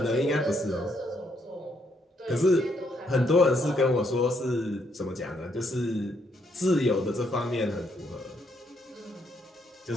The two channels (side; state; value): both; normal; correlation 0.74